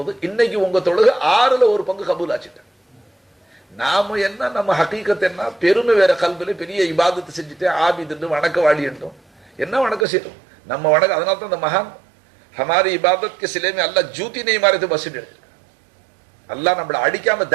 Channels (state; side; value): drops out; left; at 10.1 s